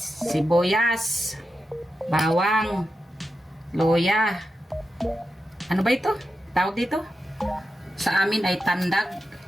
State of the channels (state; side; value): normal; both; correlation 0.90